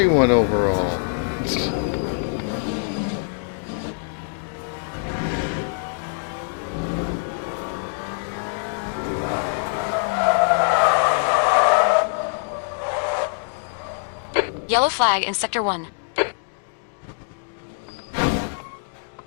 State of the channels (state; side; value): silent; right; digital silence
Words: one overall. Yellow flag in Sector 1.